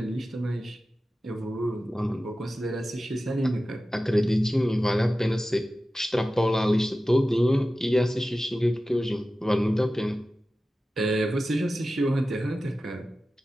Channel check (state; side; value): normal; both; correlation 0.94